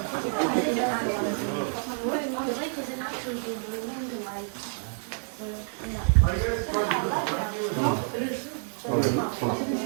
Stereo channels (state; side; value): silent; left; 59 dB below the other